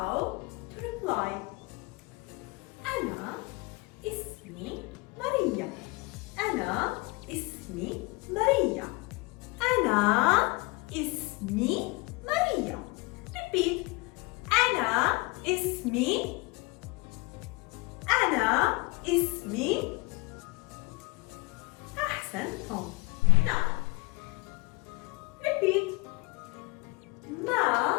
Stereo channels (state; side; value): quieter; right; 25.7 dB